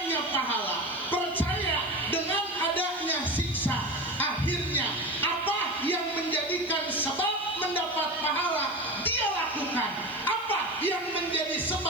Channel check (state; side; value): noise; right; hiss, 26 dB below the sound